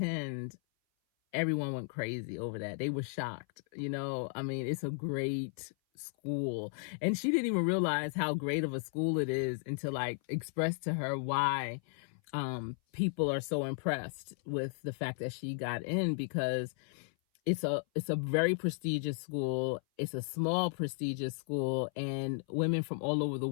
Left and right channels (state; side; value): silent; right; 55 dB below the other